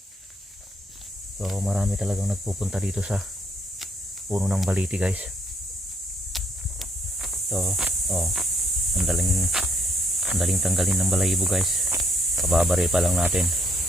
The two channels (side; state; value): both; normal; correlation 0.71